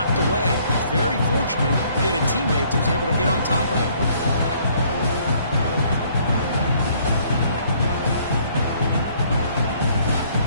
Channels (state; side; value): inverted; both; correlation -0.62